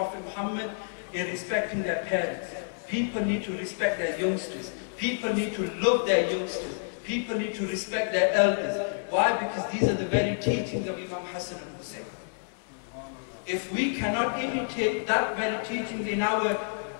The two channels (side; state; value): right; silent; digital silence